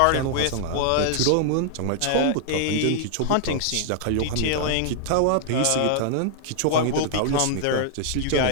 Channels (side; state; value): both; different; correlation -0.01